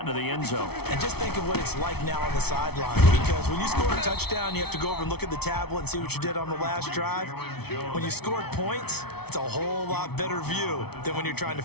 into the end zone. And just think of what it's like now on the sideline. Because when you score a touchdown, you have to go over and look at the tablet and see what you did on the last drive. When you scored points, it's a whole lot better view than when you're trying to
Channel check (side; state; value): right; late; 0.97 ms